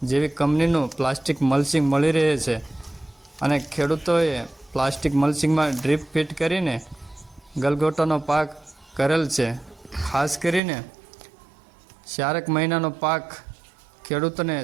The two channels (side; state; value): left; drops out; at 10.6 s